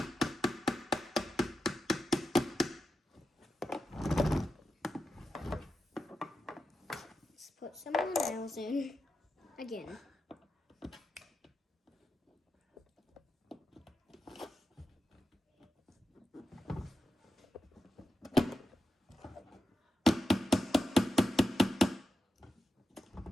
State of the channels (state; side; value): normal; both; correlation 0.89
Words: Let's put some more nails in. Again.